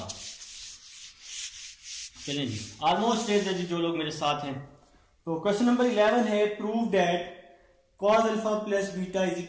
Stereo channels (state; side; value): identical; both; correlation 1.00